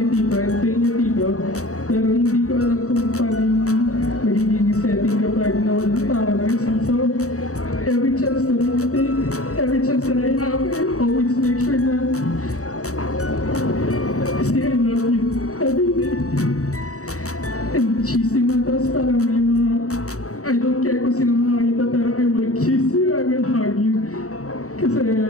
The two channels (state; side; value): late; right; 0.65 ms